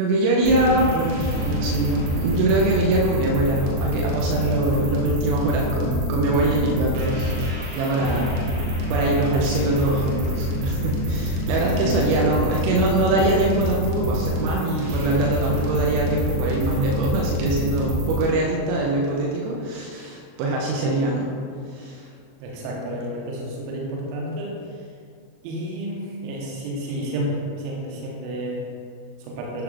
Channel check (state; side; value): late; left; 37 ms